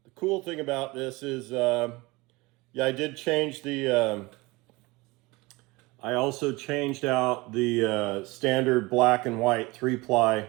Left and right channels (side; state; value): left; quieter; 22.9 dB